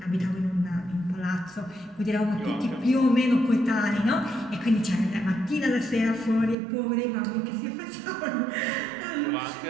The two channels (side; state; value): left; drops out; at 6.6 s